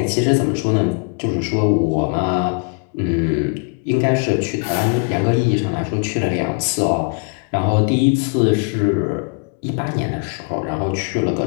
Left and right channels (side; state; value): right; quieter; 33.3 dB